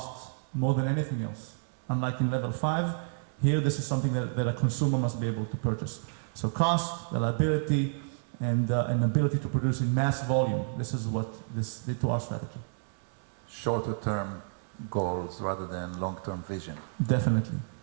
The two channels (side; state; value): left; silent; 58 dB below the other